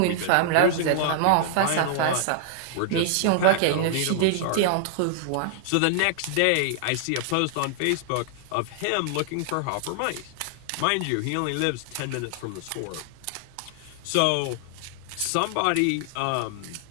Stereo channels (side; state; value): both; different; correlation 0.00